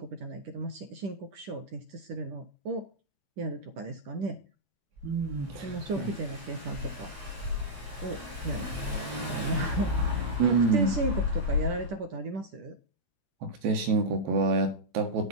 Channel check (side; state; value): left; late; 10 ms